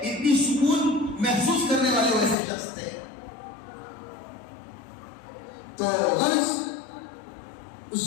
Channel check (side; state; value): right; drops out; at 2.4 s